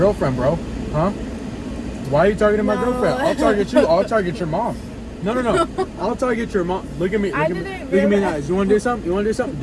bro? Huh? Why are you targeting my girlfriend? I'll target you. I'll target your mom. No. I'll target your mom. Look at me. Look at me in the eyes. You want to do something?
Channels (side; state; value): both; identical; correlation 1.00